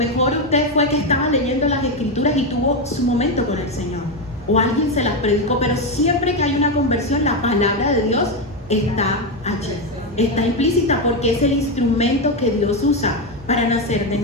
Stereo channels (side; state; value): both; normal; correlation 0.09